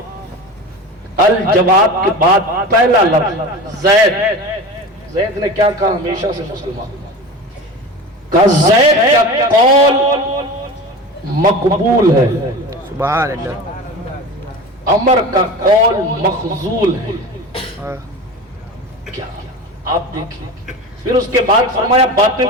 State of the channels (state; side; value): normal; both; correlation 0.31